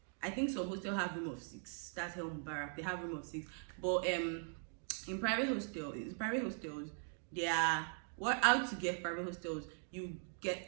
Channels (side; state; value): left; silent; 51 dB below the other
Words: I think some hostels have room of 6. That's Helm Barak, they have room of 6. But in private hostels, they are how to get private hostels. You get